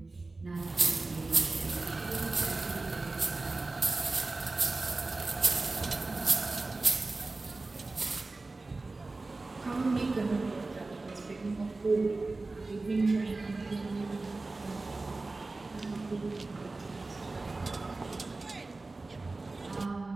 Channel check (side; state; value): left; quieter; 3.4 dB